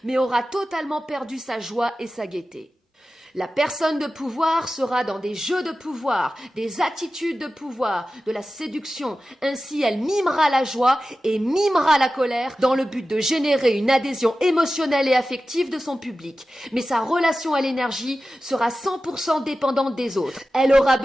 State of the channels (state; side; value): normal; both; correlation 0.94